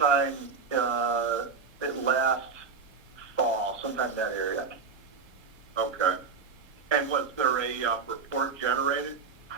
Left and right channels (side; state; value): left; quieter; 5.3 dB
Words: last fall, sometime in that area. Okay. And was there a report generated?